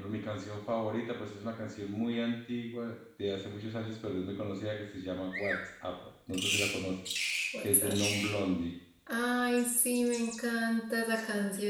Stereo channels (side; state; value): both; identical; correlation 1.00